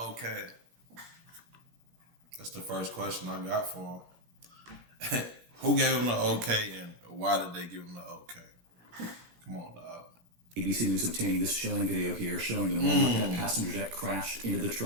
That's the first question I got for him. Who gave him the okay and why did they give him the okay? Come on, dog. ABC News obtaining this chilling video here showing the moment that passenger jet crashed into the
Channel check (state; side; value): late; left; 17 ms